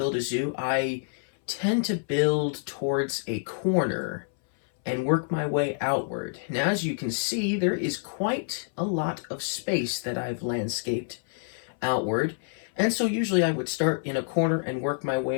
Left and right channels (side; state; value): right; silent; 60 dB below the other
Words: a zoo, I tend to build towards a corner and work my way outward. Now, as you can see, there is quite a lot of space that I've landscaped outward. And so usually I would start in a corner and work my